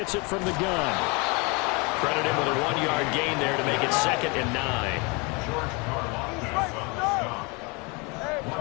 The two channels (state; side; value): quieter; right; 29.4 dB